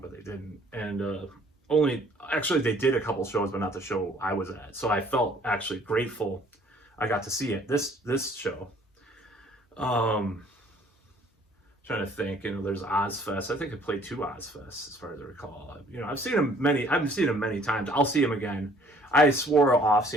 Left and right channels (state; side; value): normal; both; correlation 0.58